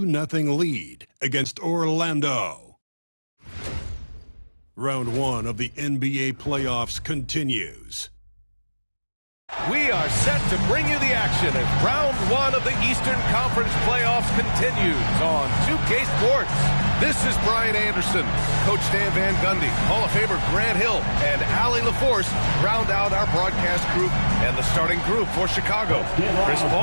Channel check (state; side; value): inverted; both; correlation -1.00